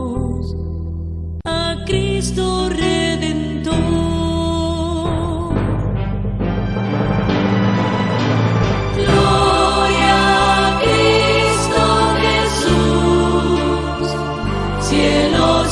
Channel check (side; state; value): both; identical; correlation 1.00